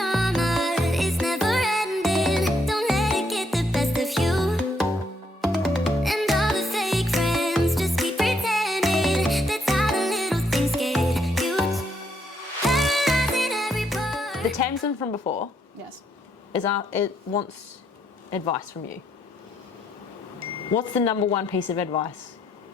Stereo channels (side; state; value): both; normal; correlation 0.74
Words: is never ending. Don't let it get the best of you. And all the fake friends just keep pretending. That's how the little things get huge. Paralyzing every part. The Tamsyn from before Yes. it wants advice from you. What's the number one piece of advice